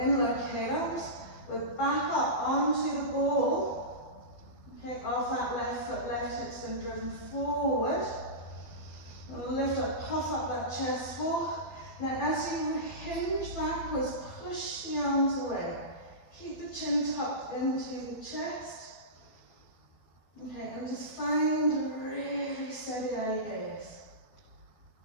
arms. We're back up onto the ball. Okay, off that left foot, left hip's been driven forward. We'll lift up, puff up that chest wall. Now as you hinge backwards, push the arms away. Keep the chin tucked into the chest. Okay, and just find a really steady eye gaze.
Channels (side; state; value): right; late; 12 ms